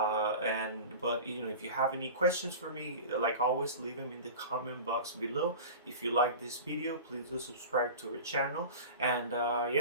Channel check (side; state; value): both; inverted; correlation -0.33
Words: if you have any questions for me, like always, leave them in the comment box below. If you like this video, please do subscribe to our channel. And